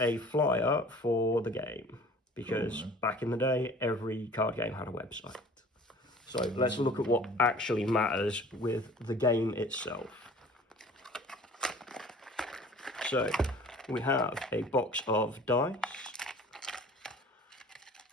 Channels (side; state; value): both; normal; correlation 0.47